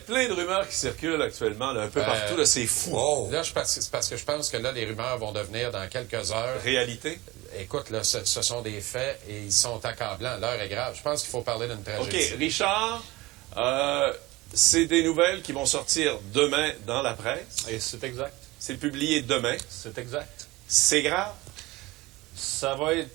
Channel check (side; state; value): left; quieter; 20.4 dB